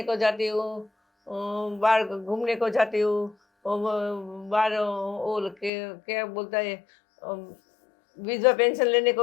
को जाती हूँ, बाहर घूमने को जाती हूँ, बाहर वो क्या बोलता है, विधवा पेंशन लेने को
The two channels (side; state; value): right; drops out; at 5.7 s